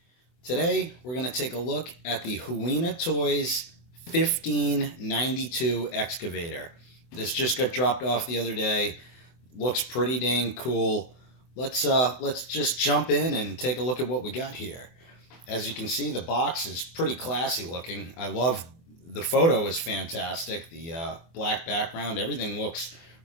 Today we're going to take a look at the HUINA Toys 1592 excavator. This just got dropped off the other day. Looks pretty dang cool. Let's just jump in and take a look at what we got here. As you can see, the box is pretty classy looking. I love the photo is fantastic. The black background, everything looks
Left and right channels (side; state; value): right; late; 24 ms